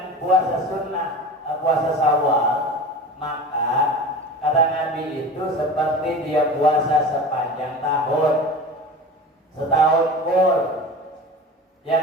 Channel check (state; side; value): normal; both; correlation 0.33